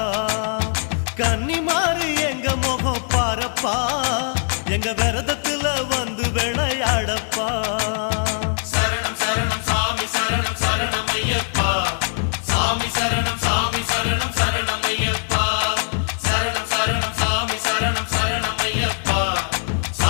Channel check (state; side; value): silent; right; 58 dB below the other